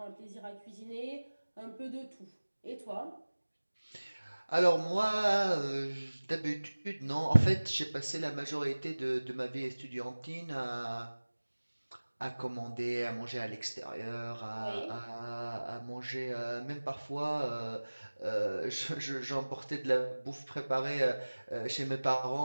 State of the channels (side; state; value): both; inverted; correlation -1.00